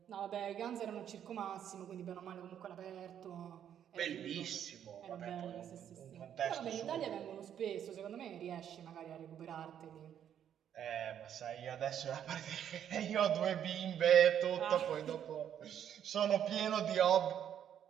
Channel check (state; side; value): quieter; left; 9.6 dB